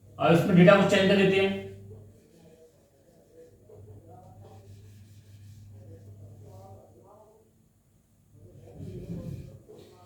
अब इसमें डेटा को चेंज कर देते हैं।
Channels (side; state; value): both; identical; correlation 1.00